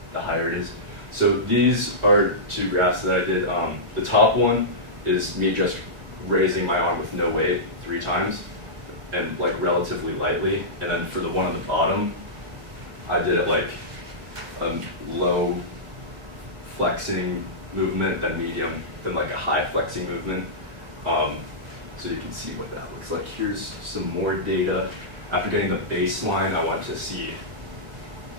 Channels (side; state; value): left; late; 1.7 ms